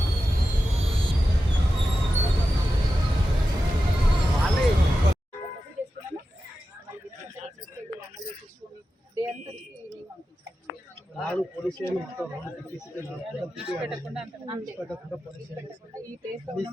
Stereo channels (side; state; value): both; normal; correlation 0.92